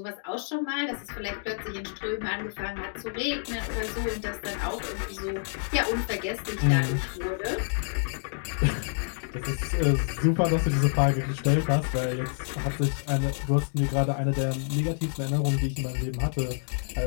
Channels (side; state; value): right; silent; digital silence